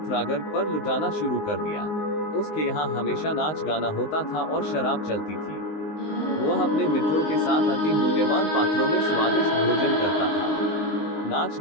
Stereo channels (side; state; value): right; late; 19 ms